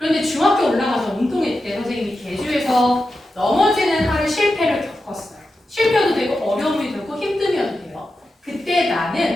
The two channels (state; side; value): normal; both; correlation 0.90